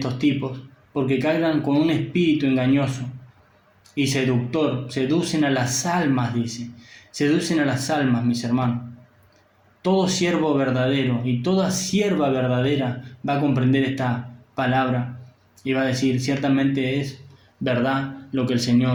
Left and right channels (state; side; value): identical; both; correlation 1.00